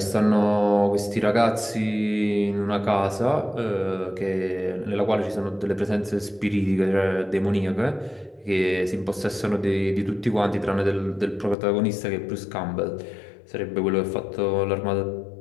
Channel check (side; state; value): right; drops out; at 11.6 s